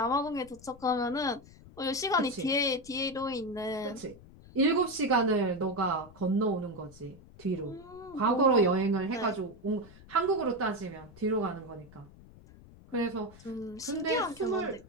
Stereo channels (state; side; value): noise; left; rumble, 21 dB below the sound